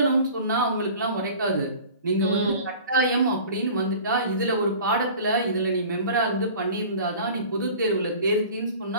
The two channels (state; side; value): inverted; both; correlation -0.42